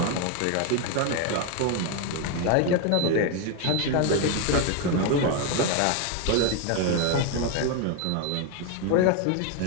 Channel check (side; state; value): both; different; correlation 0.01